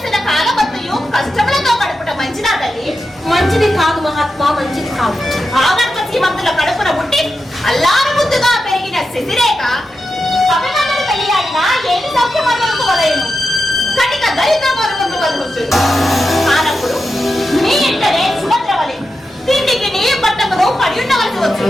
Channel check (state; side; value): normal; both; correlation 0.89